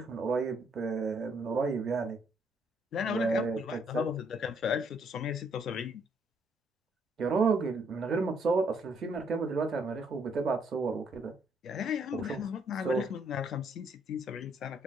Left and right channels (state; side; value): normal; both; correlation 0.69